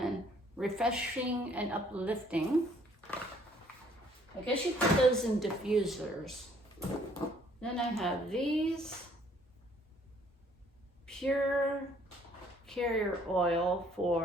refreshing and uplifting. I guess you put those in diffusers. Then I have these pure carrier oil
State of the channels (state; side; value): normal; both; correlation 0.62